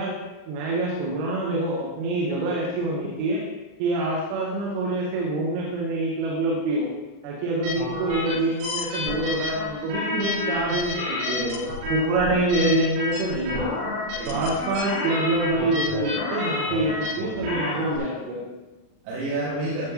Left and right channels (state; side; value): late; left; 40 ms